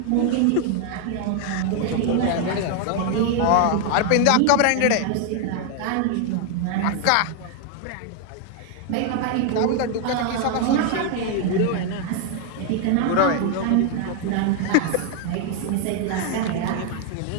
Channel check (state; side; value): different; both; correlation 0.00